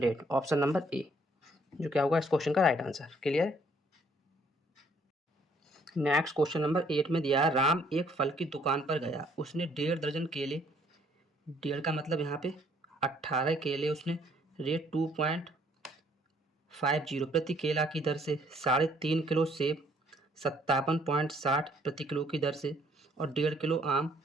ऑप्शन नंबर ए जो क्या होगा इस क्वेश्चन का right answer. Clear. Next question number 8 में दिया है राम एक फल की दुकान पर गया, उसने 1.5 दर्जन केले, 1.5 का मतलब यहाँ पे 18 केले उसने रेट 2.50 प्रति केला की दर से, 3.5 किलो सेब 57.60 प्रति किलो की दर से और 1.5 किलो आम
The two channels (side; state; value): both; normal; correlation 0.63